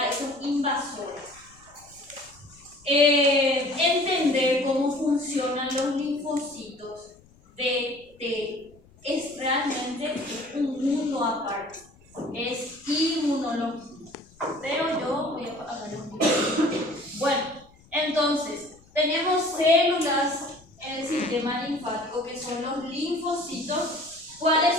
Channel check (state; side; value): noise; left; rumble, 28 dB below the sound